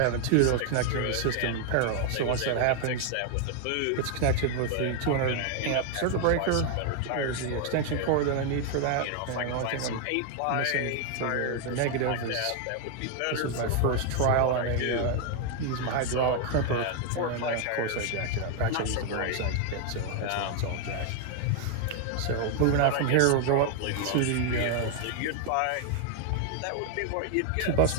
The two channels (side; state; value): both; different; correlation 0.00